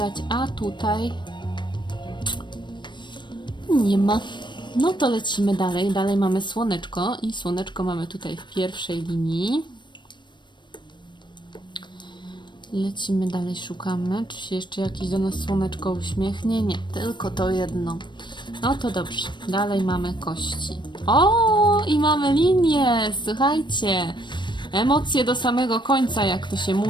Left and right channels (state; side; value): late; right; 0.22 ms